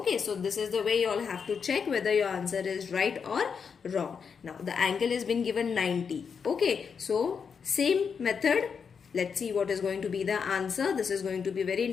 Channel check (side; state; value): right; quieter; 6.3 dB